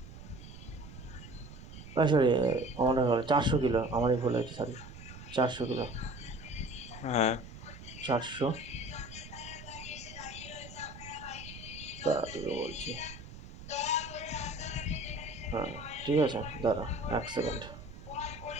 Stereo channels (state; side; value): noise; right; rumble, 14 dB below the sound